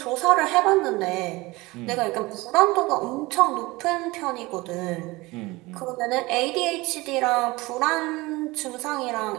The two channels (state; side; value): quieter; left; 21.8 dB